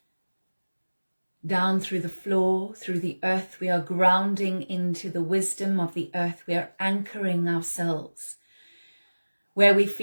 down through the floor, through the earth. We are grounding into the wisdom of the earth. We are anchoring ourselves where we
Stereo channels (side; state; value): both; inverted; correlation -1.00